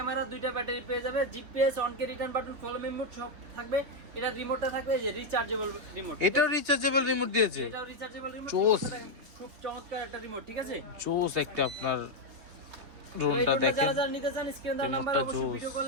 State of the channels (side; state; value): left; late; 3.4 ms